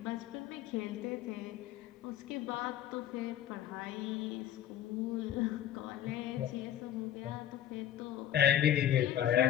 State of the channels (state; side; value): quieter; right; 11.3 dB